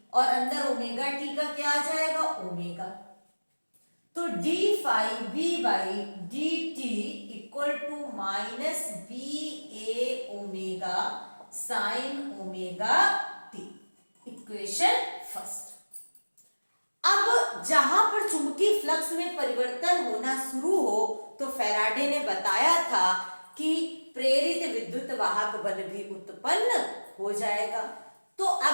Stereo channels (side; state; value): both; inverted; correlation -1.00